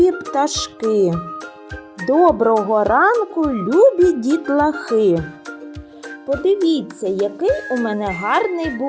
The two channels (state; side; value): identical; both; correlation 1.00